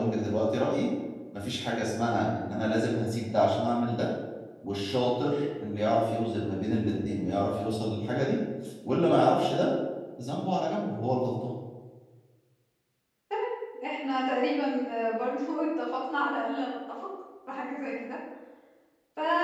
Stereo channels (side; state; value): both; identical; correlation 1.00